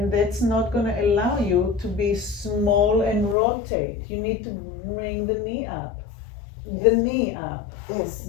that's not going to allow you to be small and rotate. You need to bring the knee up. The knee up. This.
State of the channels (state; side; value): drops out; right; at 3.4 s